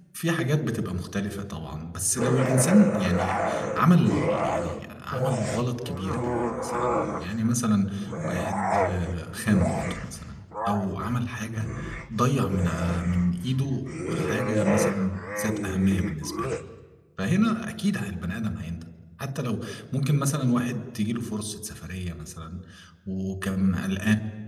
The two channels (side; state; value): both; identical; correlation 1.00